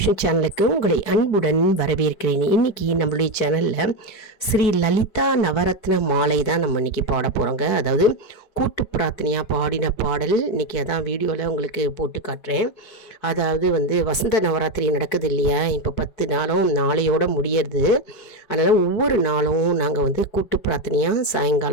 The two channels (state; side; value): late; right; 4.6 ms